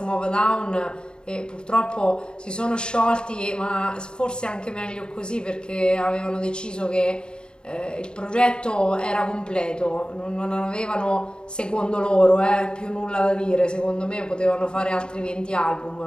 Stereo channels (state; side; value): late; right; 0.049 ms